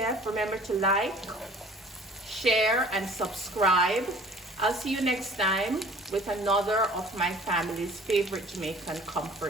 Remember to like, share, and subscribe. I'll see you next time with another of my family's favorite Jamaican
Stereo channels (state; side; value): normal; both; correlation 0.49